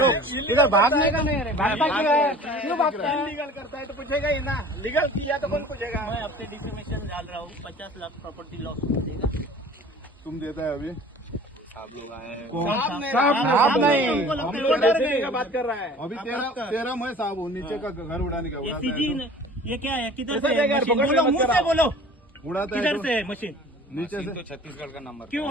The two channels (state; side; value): normal; both; correlation 0.45